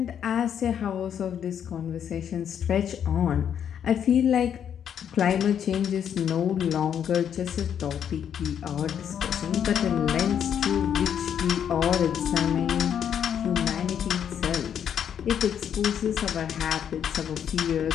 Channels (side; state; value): right; quieter; 8.7 dB